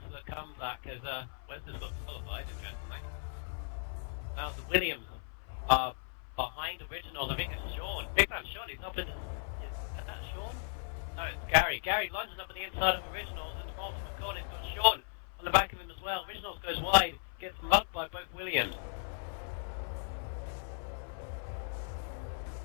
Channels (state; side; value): silent; right; 54 dB below the other